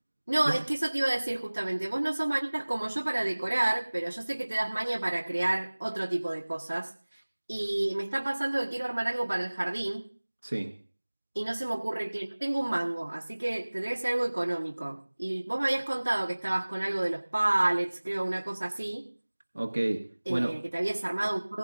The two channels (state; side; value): inverted; both; correlation -1.00